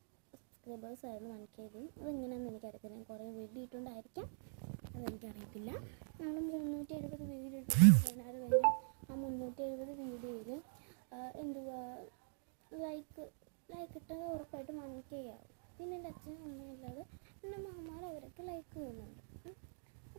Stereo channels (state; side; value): silent; left; digital silence